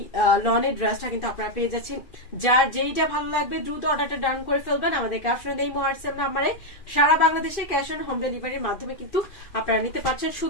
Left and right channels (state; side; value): late; right; 2.5 ms